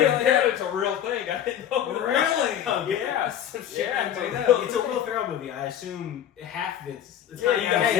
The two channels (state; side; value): quieter; right; 10.1 dB